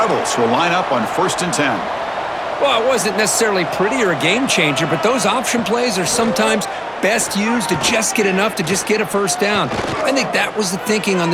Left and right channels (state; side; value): identical; both; correlation 1.00